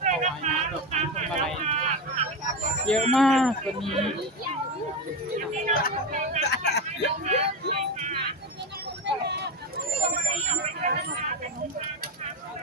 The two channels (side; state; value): both; normal; correlation 0.17